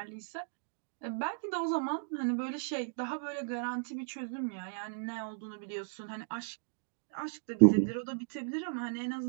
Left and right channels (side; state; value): left; silent; digital silence